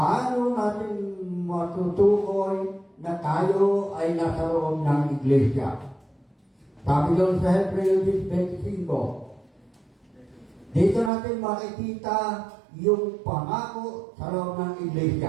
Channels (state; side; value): drops out; left; at 11.1 s